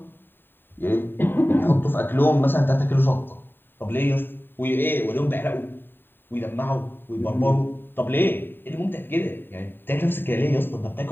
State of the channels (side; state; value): right; late; 0.096 ms